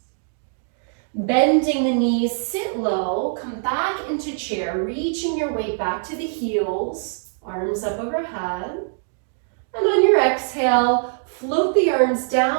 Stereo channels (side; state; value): left; silent; digital silence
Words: Bending the knees, sit low, come back into chair, reaching your weight back to the heels, arms up overhead. And on your exhale, float the arms